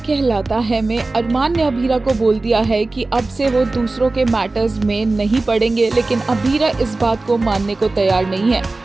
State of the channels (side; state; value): left; quieter; 3.3 dB